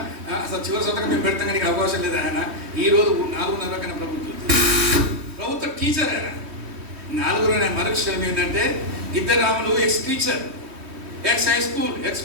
అసలు చివరి సంతకం మేము పెడతాం కానీ అవకాశం లేదు. ఆయన ఈరోజు 4:30 కన్నా ప్రభుత్వ టీచర్. ఆయన 4 మరొక విషయం ఏంటంటే Giddaramulu ex teacher. Ex high school, ex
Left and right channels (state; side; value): late; left; 3.1 ms